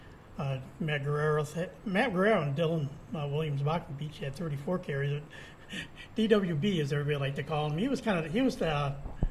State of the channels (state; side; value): identical; both; correlation 1.00